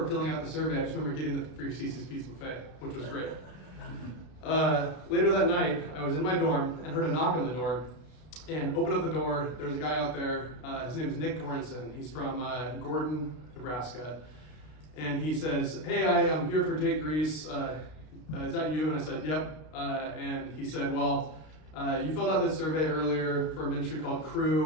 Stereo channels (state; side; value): late; right; 32 ms